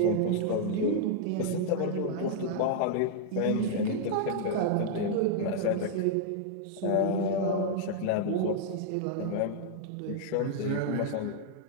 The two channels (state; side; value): different; both; correlation -0.01